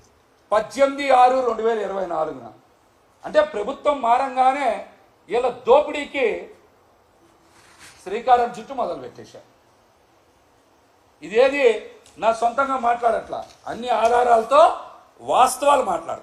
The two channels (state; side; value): identical; both; correlation 1.00